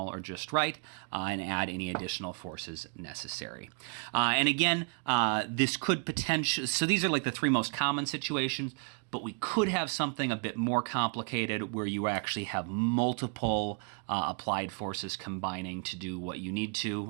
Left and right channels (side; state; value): left; quieter; 39.2 dB